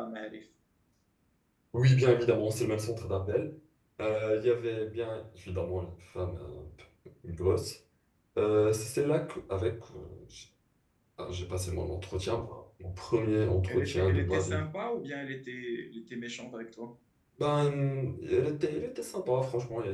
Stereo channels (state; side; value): identical; both; correlation 1.00